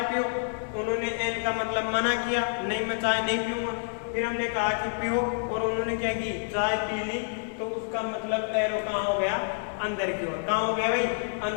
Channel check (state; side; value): silent; right; 57 dB below the other